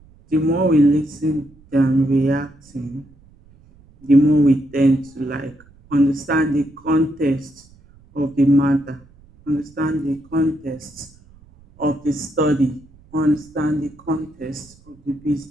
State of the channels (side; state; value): right; noise; rumble, 27 dB below the sound